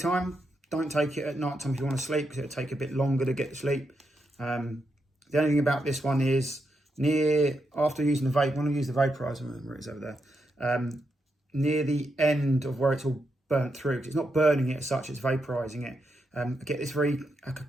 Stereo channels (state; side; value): normal; both; correlation 0.83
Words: Don't take it at night time if you want to sleep, because it'll take a bit longer to get to sleep. The only thing about this one is, after using the vape, when I use the vaporizer, remember it's over there, near the end of where it's all burnt through, because it's not burning it as such, it's vaporizing it. I get this very like a